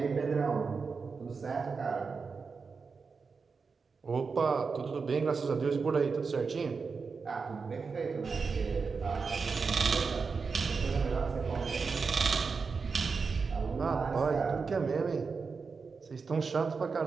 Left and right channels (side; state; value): left; quieter; 5.0 dB